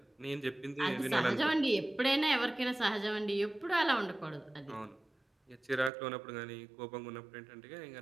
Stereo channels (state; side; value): drops out; left; at 5.9 s